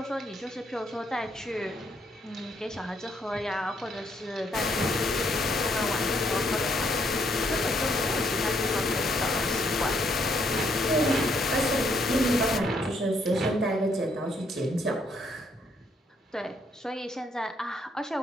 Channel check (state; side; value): normal; both; correlation 0.71